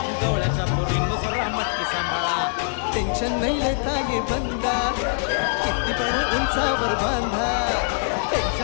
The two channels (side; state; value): right; silent; digital silence